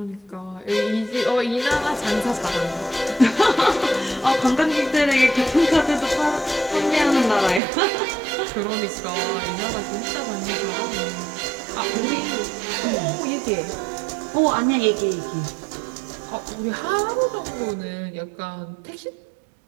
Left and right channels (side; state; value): left; drops out; at 7.6 s